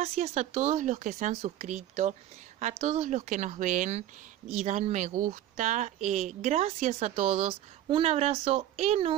a todos los que se han suscrito, a todos los que nos ven y dan me gusta. Gracias a todos. Un abrazo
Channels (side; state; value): left; quieter; 12.5 dB